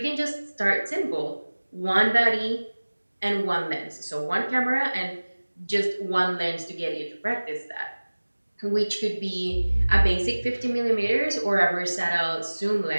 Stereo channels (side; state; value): both; inverted; correlation -1.00